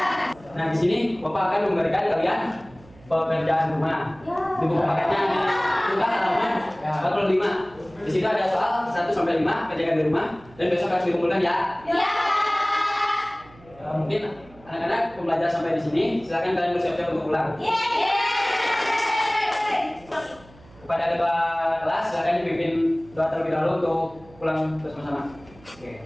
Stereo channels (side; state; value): right; noise; hum, 24 dB below the sound